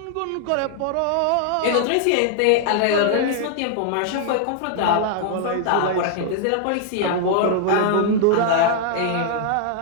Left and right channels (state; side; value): different; both; correlation 0.00